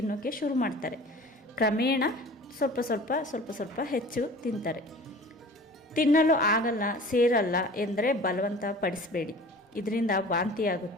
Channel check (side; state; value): both; normal; correlation 0.42